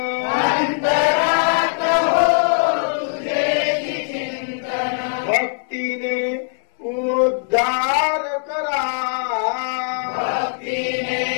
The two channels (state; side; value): silent; right; 65 dB below the other